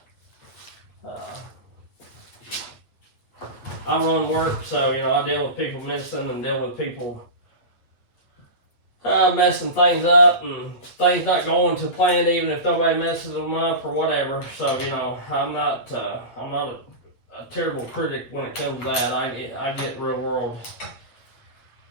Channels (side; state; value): right; late; 8.7 ms